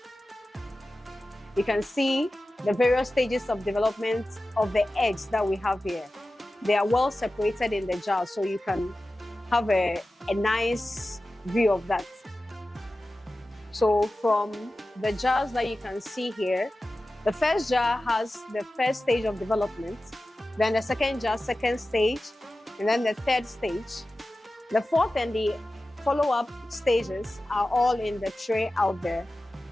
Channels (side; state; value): both; normal; correlation 0.95